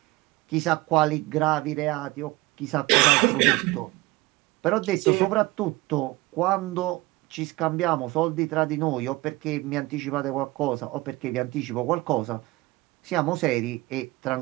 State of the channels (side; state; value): left; quieter; 21.1 dB